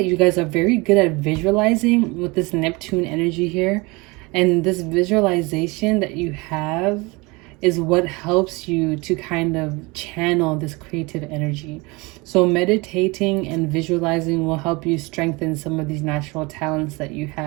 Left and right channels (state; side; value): quieter; left; 25.4 dB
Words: you guys are very good at visualizing with this Neptune energy here, and this visualization that you have is what helps you to kind of channel this creative energy. So meditating and visualizing will help you strengthen some of these natural talents that you